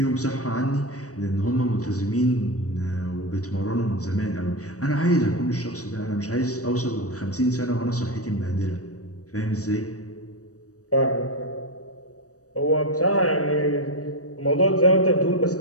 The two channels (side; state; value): right; late; 0.66 ms